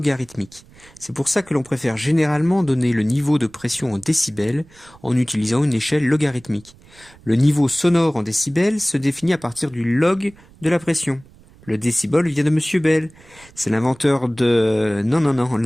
C'est pour ça que l'on préfère généralement donner le niveau de pression en décibels en utilisant une échelle logarithmique. Le niveau sonore en décibels se définit à partir du log de la pression. Le décibel vient de Monsieur Bell. C'est l'inventeur de... Non,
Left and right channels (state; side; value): noise; right; rumble, 26 dB below the sound